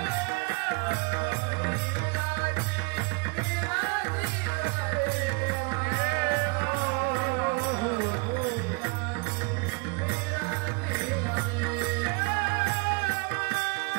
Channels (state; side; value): quieter; left; 29.4 dB